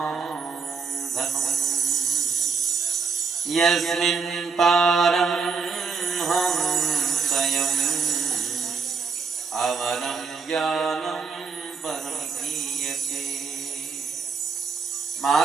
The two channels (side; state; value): left; quieter; 5.3 dB